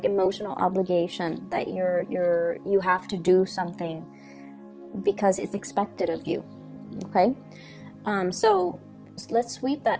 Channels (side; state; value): both; identical; correlation 1.00